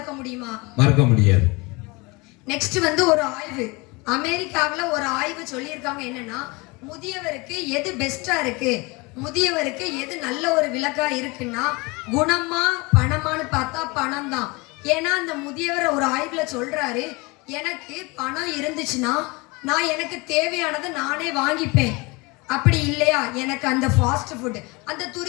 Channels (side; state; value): right; quieter; 25.9 dB